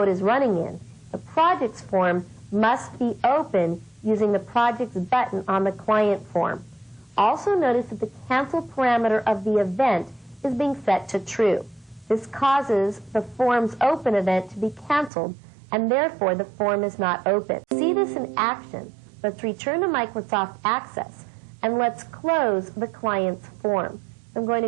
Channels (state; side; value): drops out; left; at 15.1 s